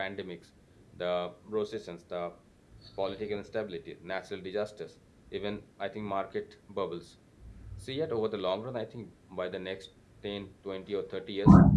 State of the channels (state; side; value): identical; both; correlation 1.00